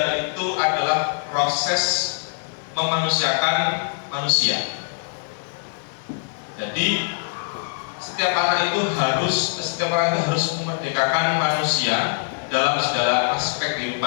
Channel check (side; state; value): right; silent; 63 dB below the other